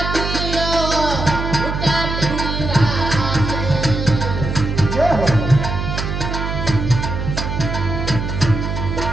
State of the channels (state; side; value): noise; right; hum, 3 dB below the sound